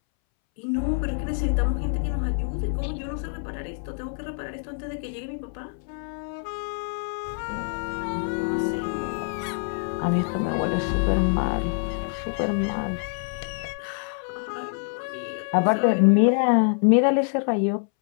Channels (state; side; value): silent; right; 61 dB below the other